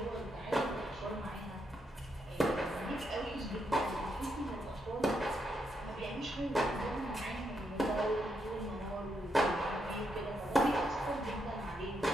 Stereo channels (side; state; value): both; normal; correlation 0.79